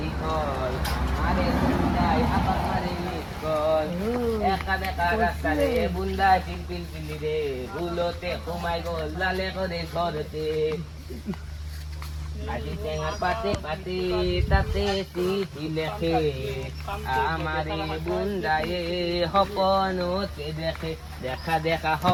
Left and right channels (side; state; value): both; identical; correlation 1.00